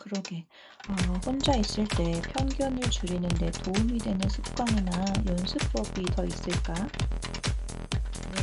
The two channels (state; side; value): identical; both; correlation 1.00